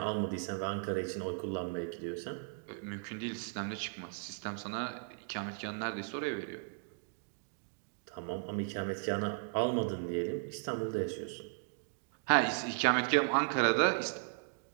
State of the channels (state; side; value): silent; left; 54 dB below the other